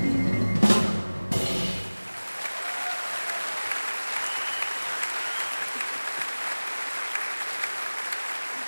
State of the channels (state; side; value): inverted; both; correlation -1.00